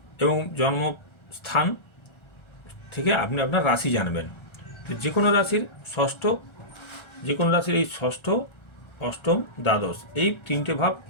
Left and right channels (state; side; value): late; right; 1.3 ms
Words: এবং জন্মস্থান থেকে আপনি আপনার রাশি জানবেন। তো যে কোনো রাশির এই ষষ্ঠ, অষ্টম, দ্বাদশ এই তিনটে ভাব